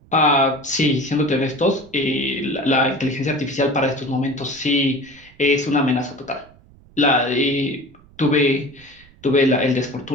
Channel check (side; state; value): right; noise; rumble, 26 dB below the sound